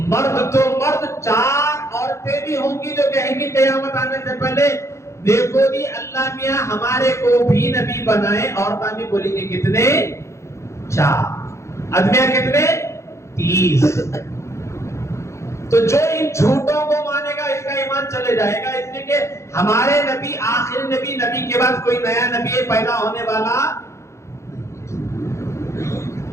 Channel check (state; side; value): late; right; 0.14 ms